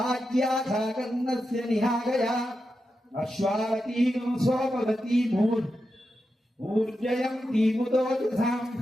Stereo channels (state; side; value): normal; both; correlation 0.89